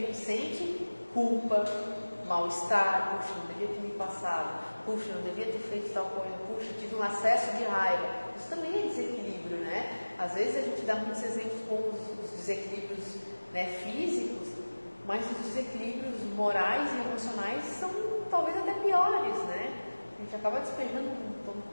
sente? Culpa, mal-estar, puxa, não devia ter me passado, puxa, não devia ter feito tal coisa, puxa, tive um acesso de raiva. Isso também é desequilíbrio, né? Às vezes a gente dá muitos exemplos com os desequilíbrios, né, físicos, mas os desequilíbrios morais e emocionais são talvez até piores, né? A gente acaba despejando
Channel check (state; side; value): inverted; both; correlation -1.00